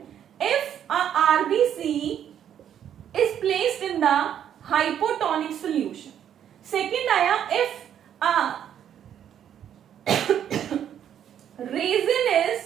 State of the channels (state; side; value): quieter; left; 9.7 dB